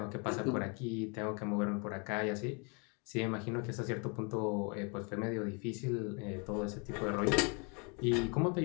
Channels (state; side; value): quieter; right; 34.3 dB